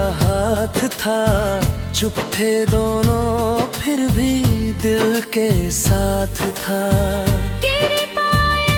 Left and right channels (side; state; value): both; identical; correlation 1.00